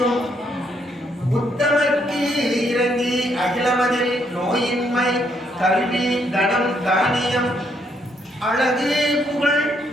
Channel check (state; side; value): normal; both; correlation 0.73